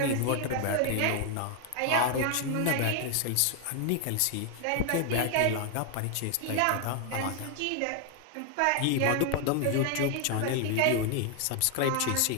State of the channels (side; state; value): both; different; correlation 0.00